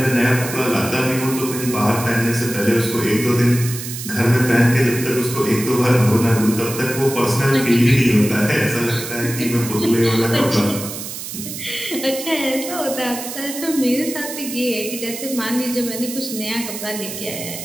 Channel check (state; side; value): noise; right; hiss, 8 dB below the sound